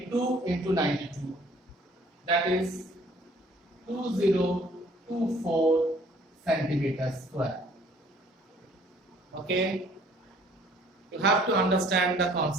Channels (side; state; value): both; normal; correlation 0.57